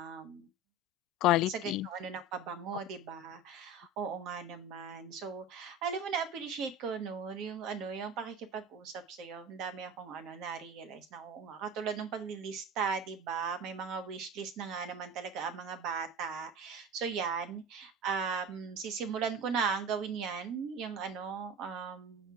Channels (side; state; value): both; normal; correlation 0.31